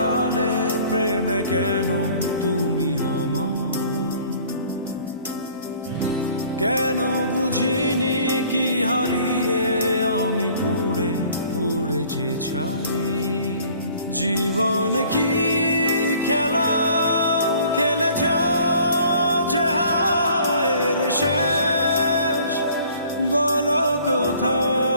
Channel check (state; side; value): inverted; both; correlation -0.54